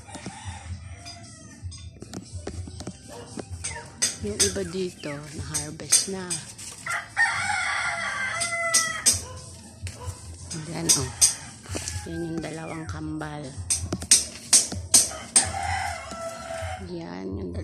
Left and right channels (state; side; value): identical; both; correlation 1.00